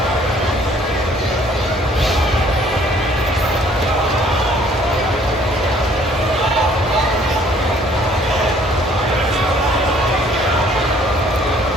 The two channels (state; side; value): normal; both; correlation 0.60